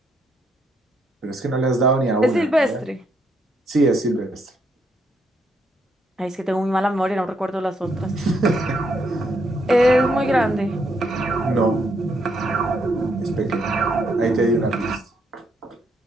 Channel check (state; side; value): normal; both; correlation 0.75